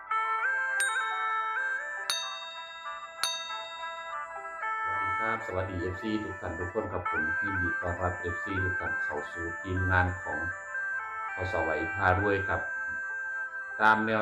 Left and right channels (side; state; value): both; identical; correlation 1.00